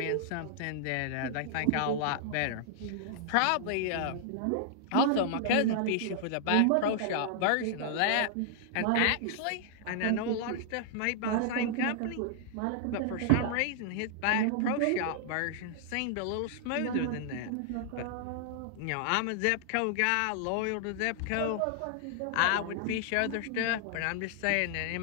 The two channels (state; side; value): different; both; correlation -0.01